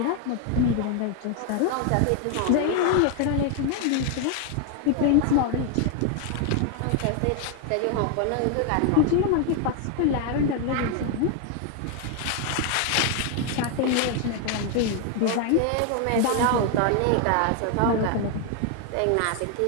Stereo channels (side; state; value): both; different; correlation 0.01